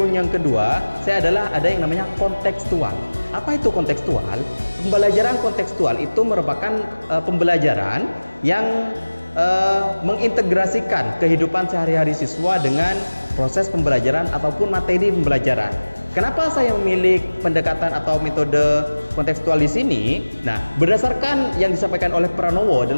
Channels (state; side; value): inverted; both; correlation -1.00